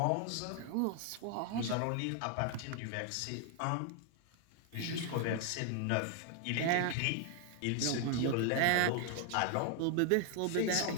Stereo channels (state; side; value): different; both; correlation 0.00